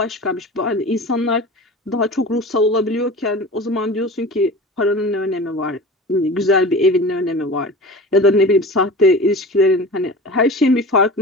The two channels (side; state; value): both; normal; correlation 0.35